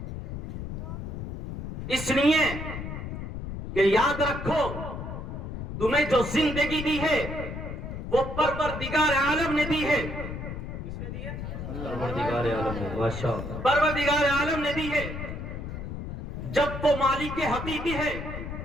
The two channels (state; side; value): noise; left; rumble, 6 dB below the sound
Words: اس لیے کہ یاد رکھو تمہیں جو زندگی دی ہے وہ پروردگار عالم نے دی ہے۔ کس نے دی ہے؟ پروردگار عالم نے، ماشاءاللہ پروردگار عالم نے دی ہے۔ جب وہ مالک حقیقی ہے